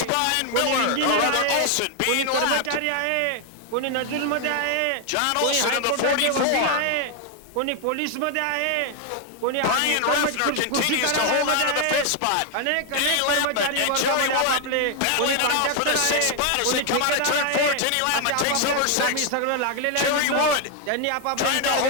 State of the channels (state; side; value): different; both; correlation 0.00